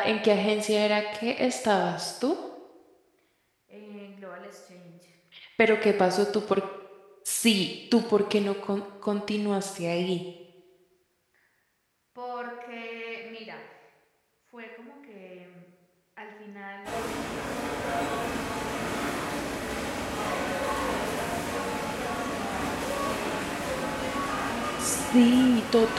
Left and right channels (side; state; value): both; identical; correlation 1.00